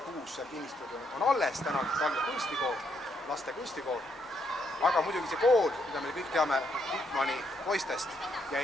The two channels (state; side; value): normal; both; correlation 0.75